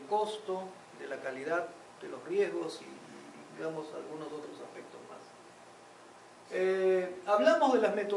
costo, de la calidad, de los riesgos y digamos algunos otros aspectos más. Hablamos de las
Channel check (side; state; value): both; identical; correlation 1.00